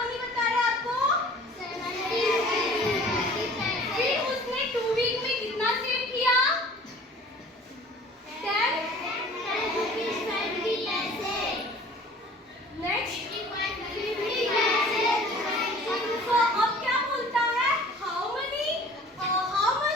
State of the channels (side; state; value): both; normal; correlation 0.48